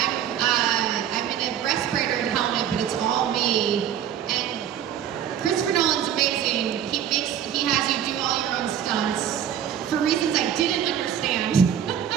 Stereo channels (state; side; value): quieter; left; 9.7 dB